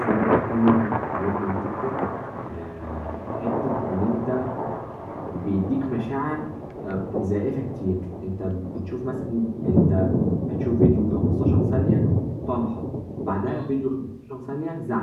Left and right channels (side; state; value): both; identical; correlation 1.00